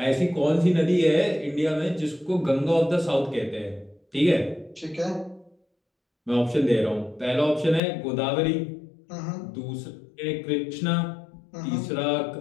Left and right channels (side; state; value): right; drops out; at 7.8 s